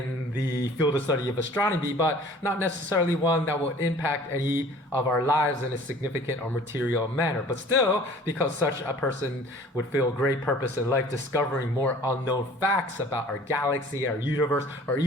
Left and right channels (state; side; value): normal; both; correlation 0.49